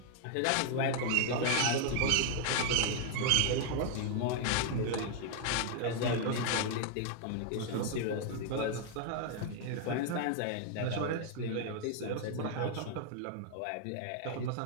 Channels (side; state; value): both; different; correlation 0.00